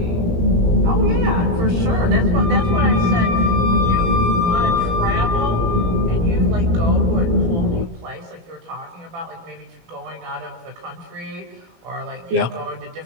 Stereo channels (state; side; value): late; left; 18 ms